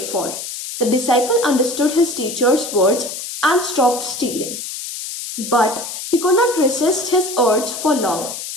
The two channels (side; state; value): left; noise; hiss, 8 dB below the sound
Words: for." The disciple understood his teacher's words and stopped stealing. But he could not resist his urge for long.